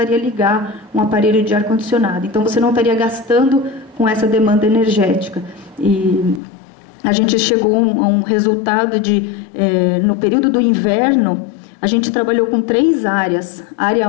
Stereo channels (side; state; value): right; drops out; at 6.4 s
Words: ligar um aparelho de ar-condicionado. Então, você não estaria gastando com essa demanda energética. E a gente chegou a um resultado no período do inverno, a gente trabalhou com 3 áreas.